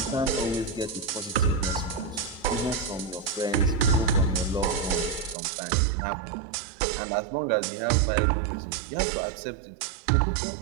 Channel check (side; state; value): left; drops out; at 5.4 s